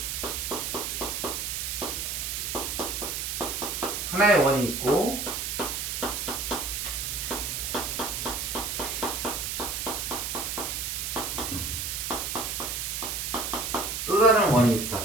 하나의 원이 있고 또 다른 원이 있어.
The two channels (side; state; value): right; noise; hiss, 2 dB below the sound